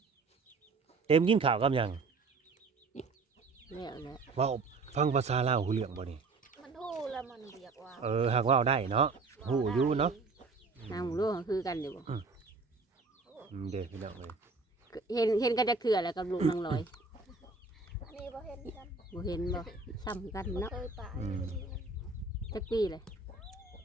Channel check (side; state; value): left; quieter; 4.0 dB